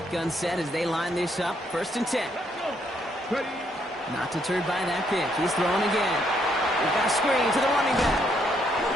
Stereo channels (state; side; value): normal; both; correlation 0.72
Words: set as they line this up. First and 10. Not deterred by that pick. He's throwing again. We've got a screen to the running back.